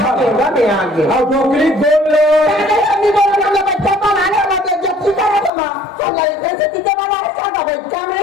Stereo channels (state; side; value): drops out; right; at 5.5 s